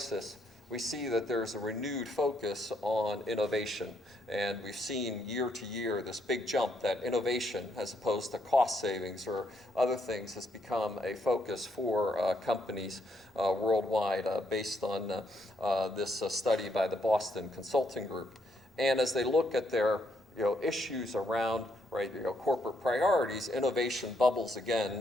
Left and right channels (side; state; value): both; normal; correlation 0.75